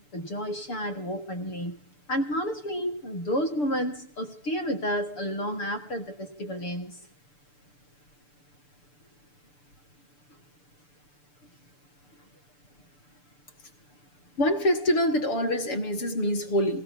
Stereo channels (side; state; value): right; late; 6.8 ms